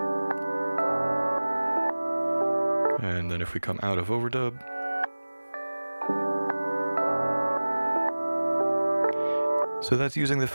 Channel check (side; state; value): both; inverted; correlation -1.00